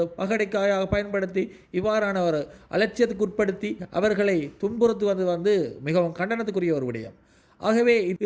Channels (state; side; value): identical; both; correlation 1.00